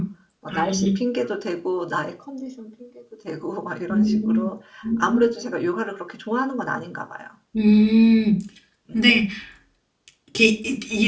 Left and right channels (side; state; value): both; identical; correlation 1.00